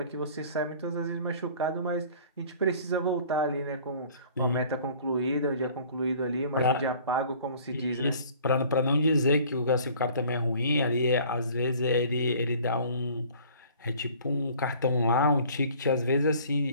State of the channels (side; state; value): both; inverted; correlation -0.51